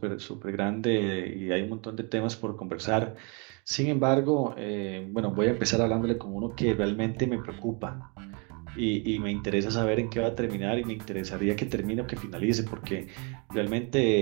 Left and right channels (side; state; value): left; quieter; 33.7 dB